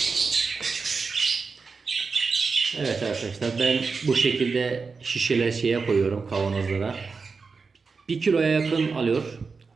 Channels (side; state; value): left; quieter; 4.7 dB